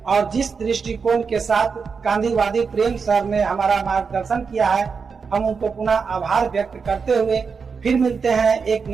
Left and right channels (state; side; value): quieter; left; 5.5 dB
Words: और जिस दृष्टिकोण के साथ गांधीवादी प्रेम सर ने हमारा मार्गदर्शन किया है, हम उनको पुनः आभार व्यक्त करते हुए फिर मिलते हैं एक